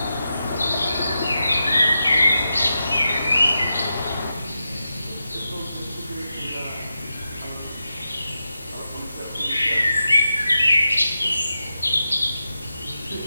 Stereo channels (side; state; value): both; inverted; correlation -0.89